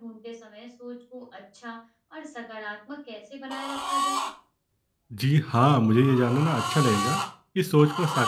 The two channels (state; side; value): identical; both; correlation 1.00